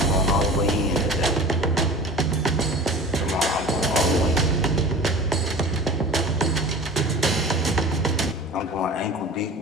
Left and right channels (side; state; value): both; normal; correlation 0.37